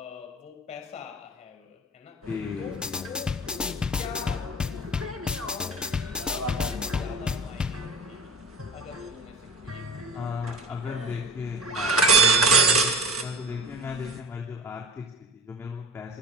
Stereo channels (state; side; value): normal; both; correlation 0.39